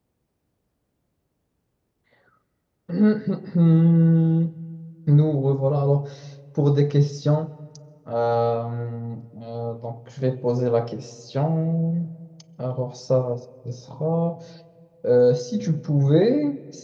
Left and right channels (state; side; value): identical; both; correlation 1.00